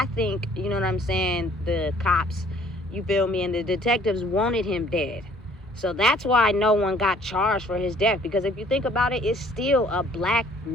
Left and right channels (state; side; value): normal; both; correlation 0.58